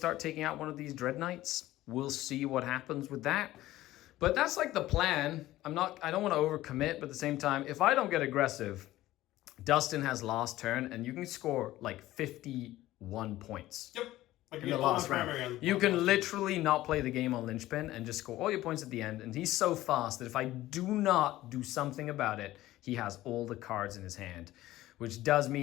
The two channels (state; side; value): quieter; right; 15.8 dB